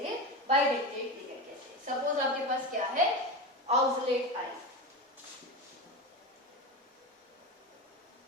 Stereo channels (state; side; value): normal; both; correlation 0.22